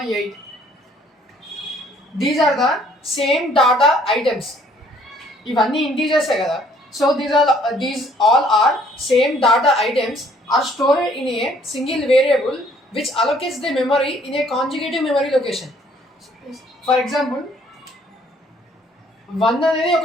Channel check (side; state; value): both; normal; correlation 0.62